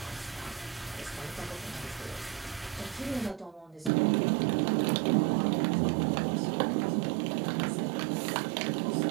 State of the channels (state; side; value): drops out; left; at 3.9 s